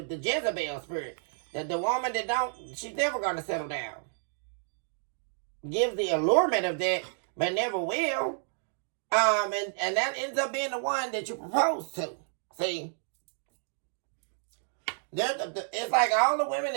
Jezebel spirit. The woman that she's never going to settle down. Gives the allurement of that, but never will. And that ends up being the one that you propose to. See? It's like all the women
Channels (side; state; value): left; silent; digital silence